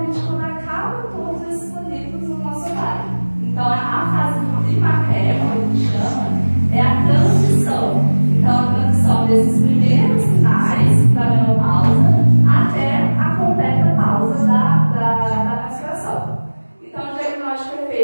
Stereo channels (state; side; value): inverted; both; correlation -1.00